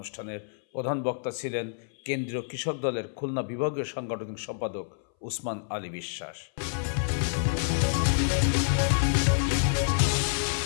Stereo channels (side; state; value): right; silent; 59 dB below the other